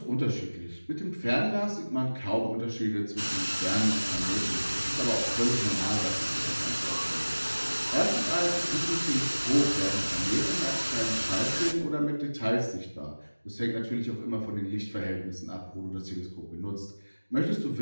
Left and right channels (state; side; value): inverted; both; correlation -1.00